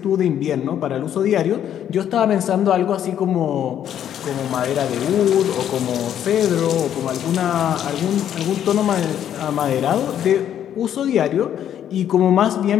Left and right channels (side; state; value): right; quieter; 10.1 dB